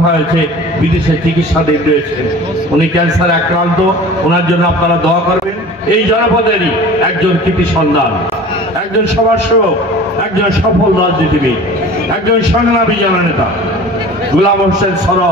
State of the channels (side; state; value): both; normal; correlation 0.41